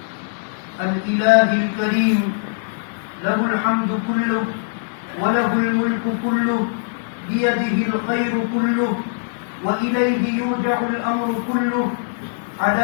الإله الكريم، له الحمد كله وله الملك كله، بيده الخير كله وإليه يرجع الأمر كله،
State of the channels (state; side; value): silent; right; digital silence